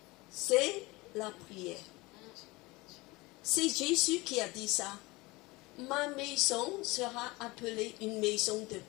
c'est la prière. C'est Jésus qui a dit ça. Ma maison sera appelée une maison de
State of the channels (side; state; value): right; quieter; 22.7 dB